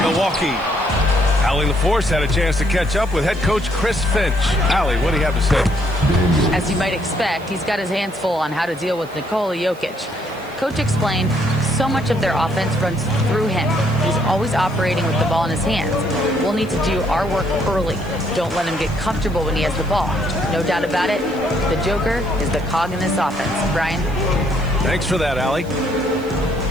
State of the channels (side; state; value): right; noise; hiss, 25 dB below the sound